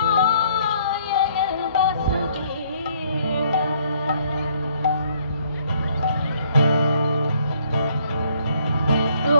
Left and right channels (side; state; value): both; inverted; correlation -0.64